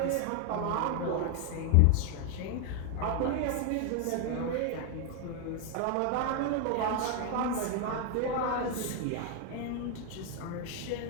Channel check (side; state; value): both; different; correlation 0.01